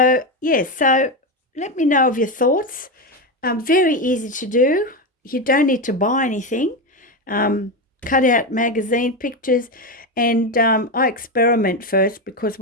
so let me know of your thoughts. Very easy to do. You don't need to buy anything. Cut out magazine pictures, and I experiment first, because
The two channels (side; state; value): both; normal; correlation 0.13